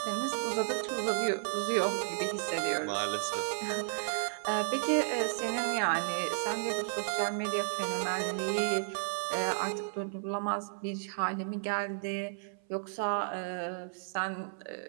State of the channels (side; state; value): left; silent; 56 dB below the other